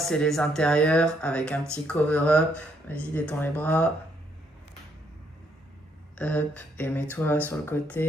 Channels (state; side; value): normal; both; correlation 0.72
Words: les intérieurs avec un petit cover-up. Vas-y, détends les bras. Hop. Et mets-toi sur le